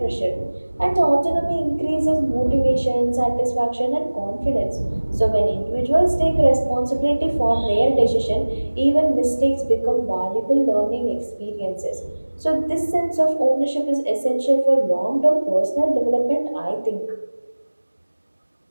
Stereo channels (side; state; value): both; inverted; correlation -1.00